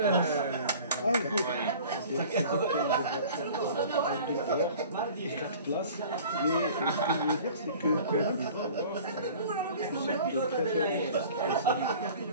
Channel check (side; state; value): both; inverted; correlation -0.45